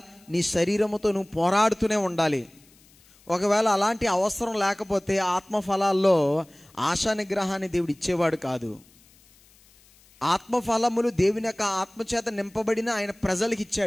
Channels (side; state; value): left; noise; hiss, 29 dB below the sound